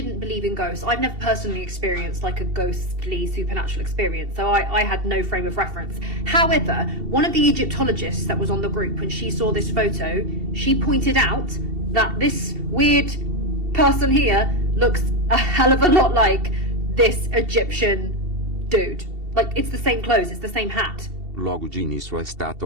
believe in ghosts. I've never personally experienced like a ghostly supernatural experience, so I had no frame of reference. However, one of the Egyptologists that was on the group, when she saw this photo, she pointed out that this weird person here looks a hell of a lot like this Egyptian dude. Like, it's the same clothes, it's the same hat. Logo de início a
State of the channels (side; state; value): left; late; 2.7 ms